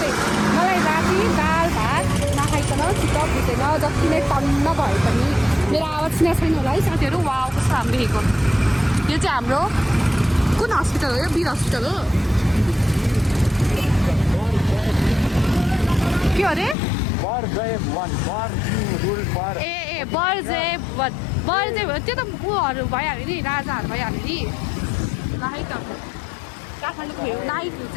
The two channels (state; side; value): drops out; right; at 16.8 s